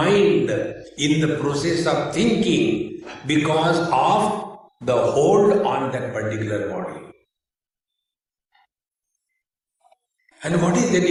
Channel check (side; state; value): both; identical; correlation 1.00